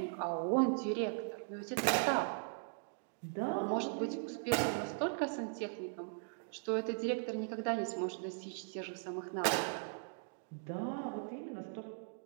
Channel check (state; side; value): silent; left; digital silence